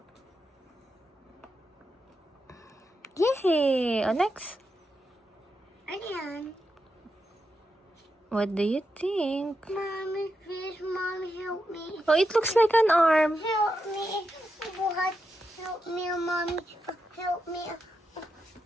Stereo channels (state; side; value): normal; both; correlation 0.86